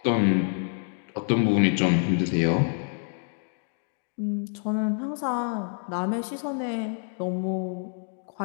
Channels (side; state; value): right; silent; 59 dB below the other